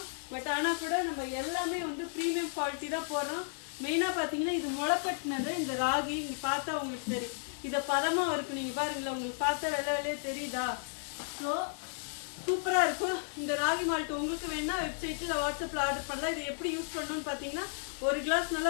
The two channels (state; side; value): silent; right; 55 dB below the other